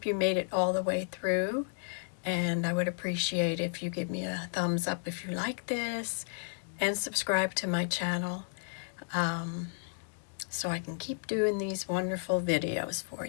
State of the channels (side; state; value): right; silent; 56 dB below the other